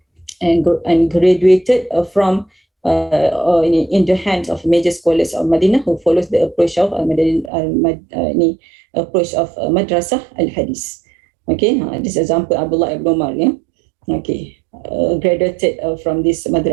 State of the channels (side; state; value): left; drops out; at 7.5 s